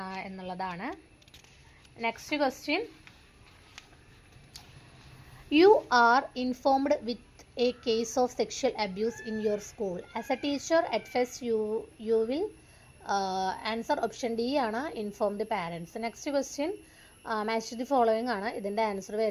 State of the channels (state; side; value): identical; both; correlation 1.00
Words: എന്നുള്ളതാണ്. Next question, you are informed with a case of sexual abuse in your school. As A teacher at first you will. Answer option D ആണ് inform the parents. Next question, match the following ആണ്. ഇതിൻ്റെ ആൻസർ